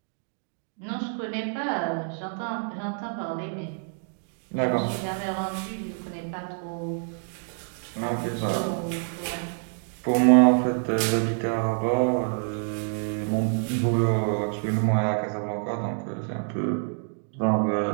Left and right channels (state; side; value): silent; left; 59 dB below the other